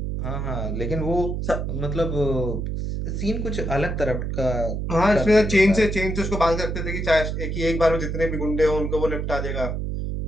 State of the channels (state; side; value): noise; right; hum, 2 dB below the sound